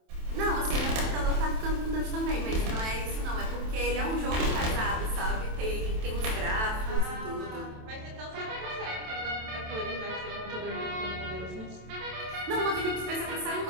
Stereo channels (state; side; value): late; left; 27 ms